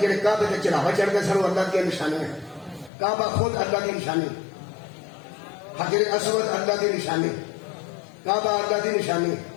کعبے کے چڑھاوا چڑھ کے سر اللہ کی نشانی ہے کعبہ خود اللہ کی نشانی حجر اسود اللہ کی نشانی کعبہ اللہ کی نشانی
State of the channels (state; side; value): drops out; right; at 2.9 s